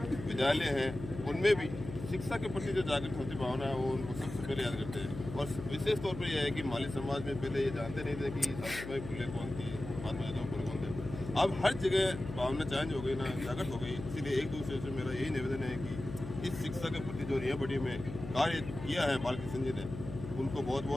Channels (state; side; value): noise; left; hum, 10 dB below the sound